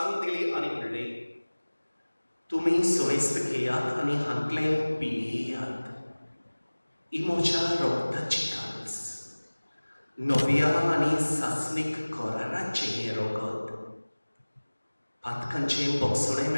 दिली आनी म्हणलें तुमी सुमेस्त घेयात आनी हातलें पियेयात ही म्हज्या रोगताची काल्स नव्या आनी सासणीक कराराचें हें रोगत पातकांचें बोगसणें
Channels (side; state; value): both; inverted; correlation -1.00